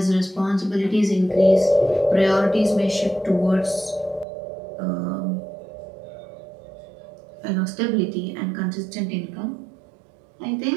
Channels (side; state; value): left; drops out; at 4.2 s